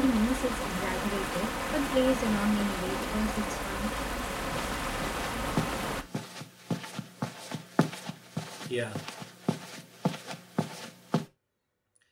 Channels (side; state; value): both; identical; correlation 1.00